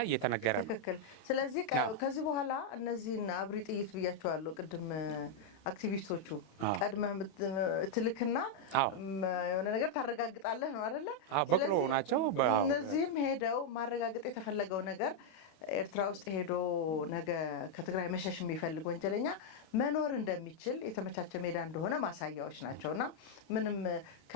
እየተነገረ ነው። ትክክል። ስለዚህ ከዚህ በኋላ እነዚህን አብሪ ጥይት ብያቸዋለሁ ቅድም አክቲቪስቶቹ ቀድመህ ትልክና የሆነ ነገር ታረጋግጣለህ ነው አይደለ? ስለዚህ እነዚህም ሄደው ማረጋገጥ የተፈለገው ነገር ኤርትራ ውስጥ ሄዶ ነገ ከትግራይ መሸሽ የሚፈልግ ወንጀለኛ መኖር እንደሚችል የተመቻቸ ሜዳ እንደሆነ ማሳያዎች ናቸውና ምንም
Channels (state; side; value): late; right; 32 ms